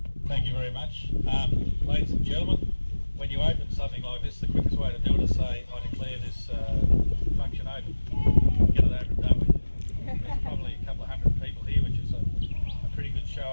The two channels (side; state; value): both; inverted; correlation -1.00